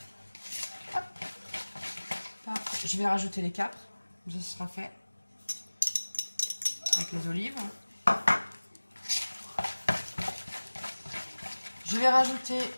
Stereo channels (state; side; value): inverted; both; correlation -1.00